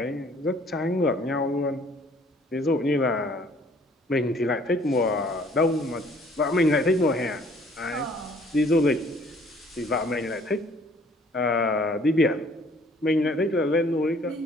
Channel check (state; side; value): normal; both; correlation 0.58